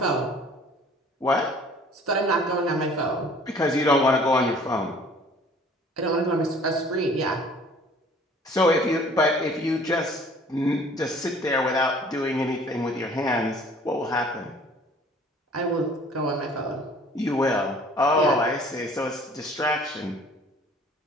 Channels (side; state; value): both; normal; correlation 0.52